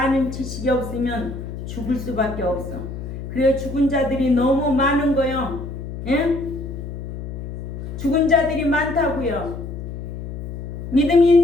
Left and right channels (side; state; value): left; noise; hum, 8 dB below the sound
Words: 지식이 없으면 죽을 수밖에 없어. 그래 죽은 자들이 너무 많은 거요. 예? 죽은 자들이 많다고요. 믿음이